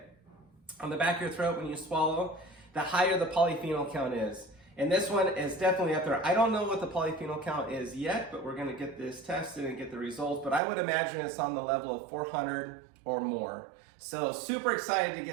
on the back of your throat when you swallow, the higher the polyphenol count is. And this one is definitely up there. I don't know what the polyphenol count is yet, but we're gonna get this tested and get the results. But I would imagine it's on the level of 400 or more. So super excited to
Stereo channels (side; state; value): left; drops out; at 10.6 s